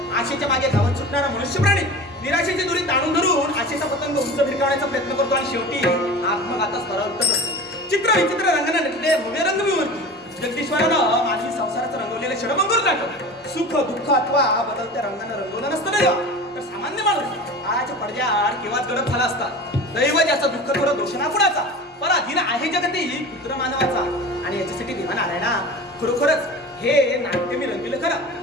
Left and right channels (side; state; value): both; normal; correlation 0.35